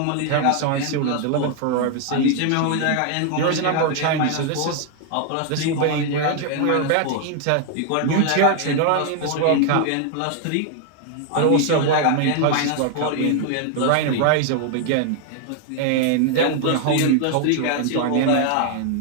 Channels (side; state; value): both; different; correlation 0.00